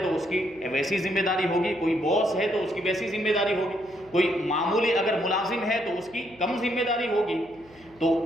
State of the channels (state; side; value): noise; left; hum, 28 dB below the sound